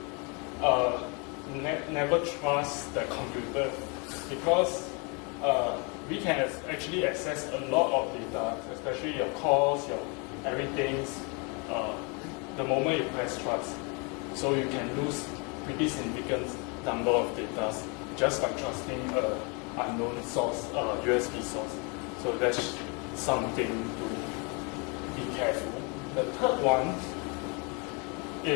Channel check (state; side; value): quieter; right; 32.5 dB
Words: never trust the computer, because we can actually access a lot of data, especially your calls, your everything, the moment you press trust. So you can lose pretty significant number of data just by trusting an unknown source, USB source. So that's something to be careful. The third one